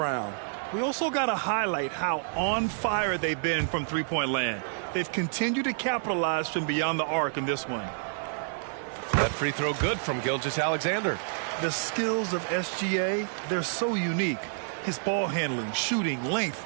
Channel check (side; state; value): left; silent; digital silence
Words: We also got to highlight how on fire they've been from three-point land. They've continued to capitalize from beyond the arc in this one. That free throw good from Gilgeous-Alexander. The skills of SGA, they're so unique. His ball handling, shooting, length.